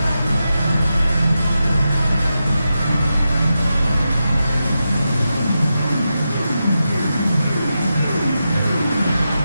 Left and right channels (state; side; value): inverted; both; correlation -0.89